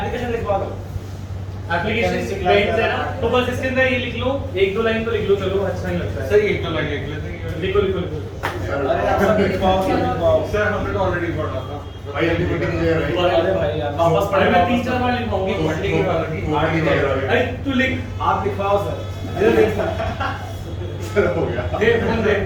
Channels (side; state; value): both; identical; correlation 1.00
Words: लिखवा दो। एप्लीकेशन पेज है ना, तो बस इसके अंदर ये लिख लो, एक दो लाइन तो लिख लो, चलो अच्छा नहीं लगता है। सर एक तो लगे लेते हैं। लिखो लिखो लिखो। अरे आप सब लिखवाओ, सब लिखवाओ। सर हमने तो ऑलरेडी पढ़ा था। भाई अभी मीटिंग नहीं है भाई। अरे भाई यार वापस अरे पढ़े मैं 3-4 बार लिखवाऊंगी। पढ़ने की बात की आगे जा रहा है। अरे तू लिख। आप लिखवाओ सर। इधर लिख। सर हो गया दे फोन दे।